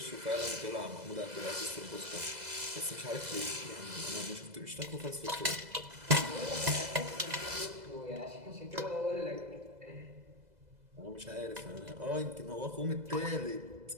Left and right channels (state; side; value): late; left; 2.0 ms